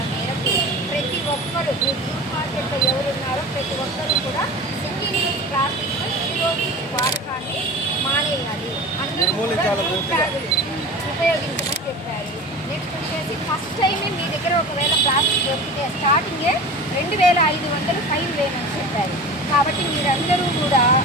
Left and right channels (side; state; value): both; normal; correlation 0.34